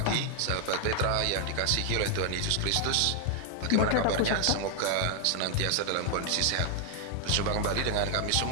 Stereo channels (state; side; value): different; both; correlation 0.00